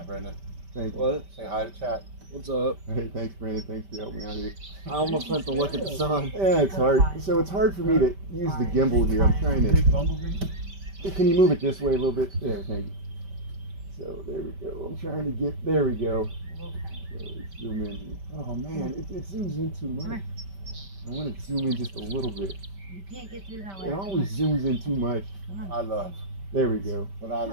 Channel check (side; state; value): left; late; 5.1 ms